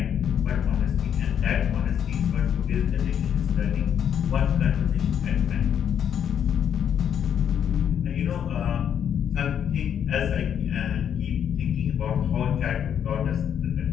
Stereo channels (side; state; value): right; quieter; 8.8 dB